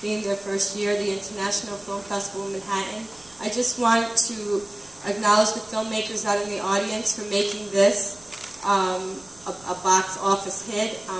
being their first year, the International Film Festival in Manhattan. I just want to acknowledge the filmmakers out in the audience for making this a box office hit.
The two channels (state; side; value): noise; right; rumble, 26 dB below the sound